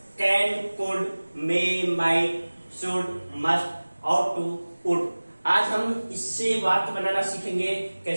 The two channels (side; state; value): both; inverted; correlation -1.00